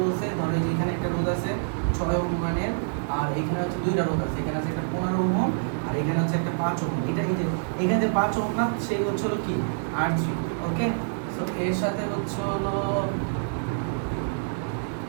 ধরো যে এখানে একটা রোধ আছে 6 ওহম মানের, আর এখানে হচ্ছে দুইটা রোধ আছে, এখানে আছে একটা 15 ওহম আর এখানে হচ্ছে একটা 5 ওহম। এটা এই যে এখানে যে 5 ওহম না, সেই হচ্ছে হলো কি R3, ওকে। সো এর সাথে হচ্ছে হলো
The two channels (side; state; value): left; silent; digital silence